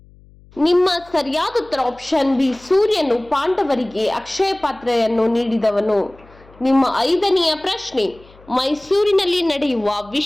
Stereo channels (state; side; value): noise; left; hum, 26 dB below the sound